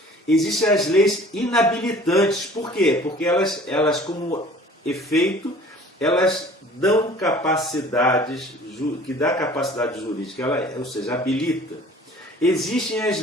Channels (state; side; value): normal; both; correlation 0.49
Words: Existem as leis inabilitantes. Por quê? Porque elas como efeito, elas dão capacidades, que dá capacidade jurídica, ou seja, habilita. Existem as